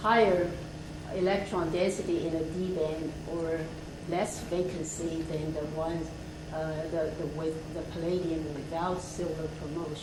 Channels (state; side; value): identical; both; correlation 1.00